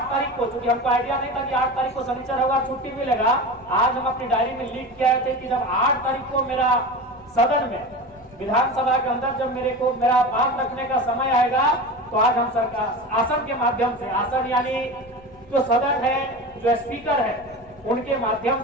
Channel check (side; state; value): left; noise; rumble, 26 dB below the sound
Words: तारीख को, चूंकि हमको आइडिया नहीं था कि 8 तारीख को शनिचर होगा, छुट्टी मिलेगा, आज हम अपनी डायरी में लिख के आए थे कि जब 8 तारीख को मेरा सदन में, विधानसभा के अंदर जब मेरा बात रखने का समय आएगा, तो आज हम सरकार आसन के माध्यम से, आसन यानी जो सदन है, जो स्पीकर है, उनके माध्यम